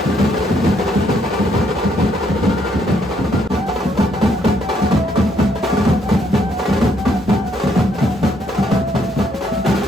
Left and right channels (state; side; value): normal; both; correlation 0.71